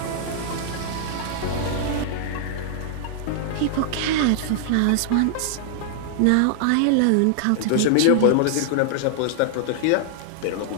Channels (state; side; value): different; both; correlation -0.01